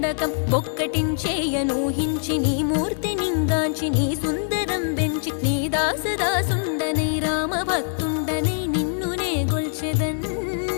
బొక్కటించేయనూహించి నీ మూర్తి నింగాంచి నీ సుందరం పెంచి నీ దాసదాసుండనై రామ భక్తుండనై నిన్నునే గొల్చెదన్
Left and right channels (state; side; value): silent; right; digital silence